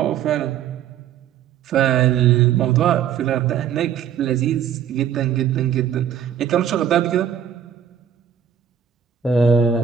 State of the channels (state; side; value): quieter; left; 8.9 dB